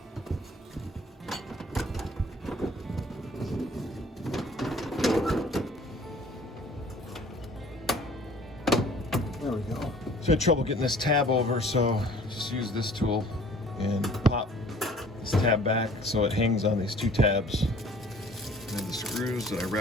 There we go. So I had trouble getting this tab over, so just use this tool and pop this tab back so it hangs on these 2 tabs. And the screws that I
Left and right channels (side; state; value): both; normal; correlation 0.52